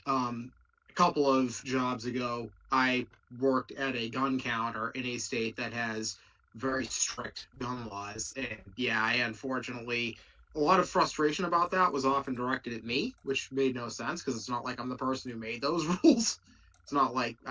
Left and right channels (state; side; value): identical; both; correlation 1.00